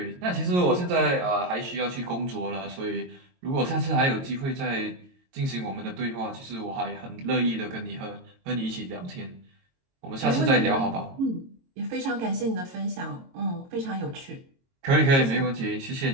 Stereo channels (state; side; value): late; left; 22 ms